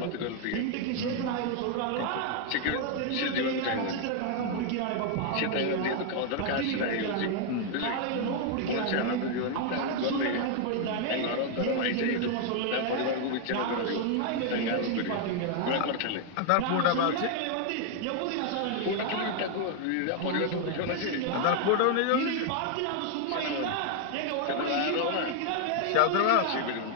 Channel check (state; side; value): different; both; correlation 0.00